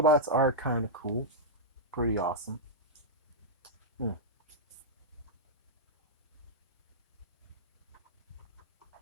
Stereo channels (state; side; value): normal; both; correlation -0.08